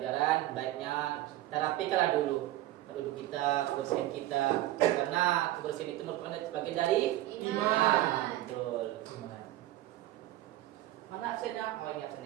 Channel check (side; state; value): left; quieter; 15.5 dB